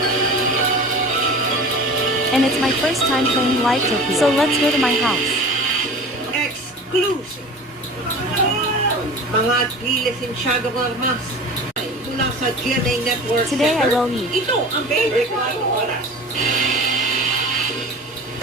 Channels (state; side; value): normal; both; correlation 0.37